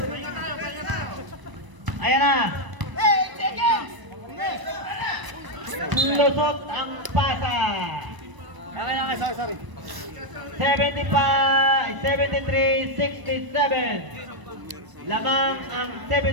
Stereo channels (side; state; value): left; late; 1.0 ms